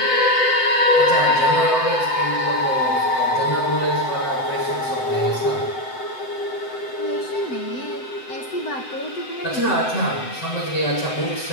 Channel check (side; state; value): right; late; 7.8 ms